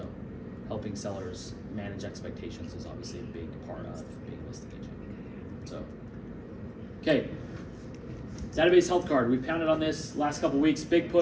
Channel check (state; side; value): identical; both; correlation 1.00